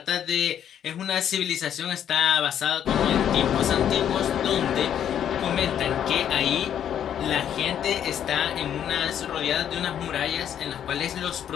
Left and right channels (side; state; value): right; quieter; 9.6 dB